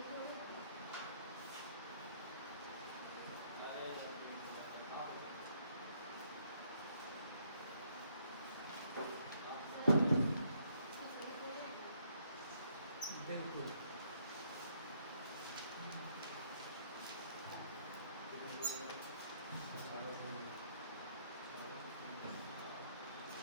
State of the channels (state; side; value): inverted; both; correlation -0.70